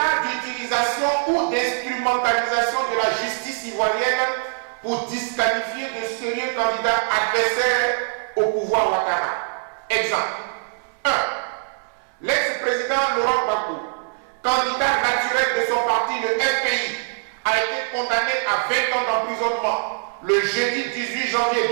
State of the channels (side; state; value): left; silent; 64 dB below the other